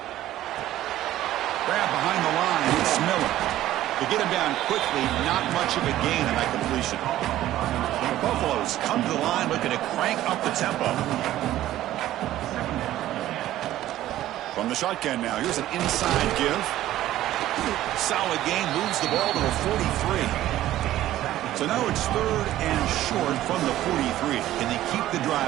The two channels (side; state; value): left; quieter; 13.9 dB